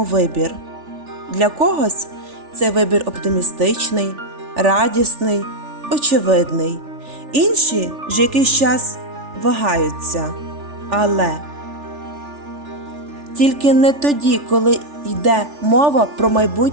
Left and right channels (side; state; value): left; late; 3.4 ms